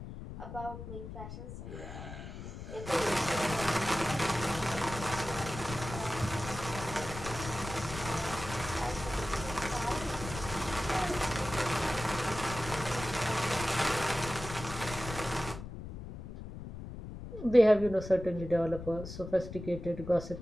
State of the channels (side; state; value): left; noise; rumble, 10 dB below the sound